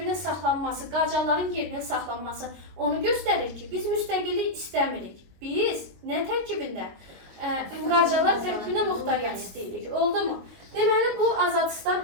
saxlanması, Qacarların gerbinin saxlanması onu göstərir ki, biz müstəqillik istəmirik. Biz nə tərkibində? Qacarlar tərkibində muxtariyyət istəyirik. Oldu mu? Deməli, bu Azadistan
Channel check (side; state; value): left; late; 22 ms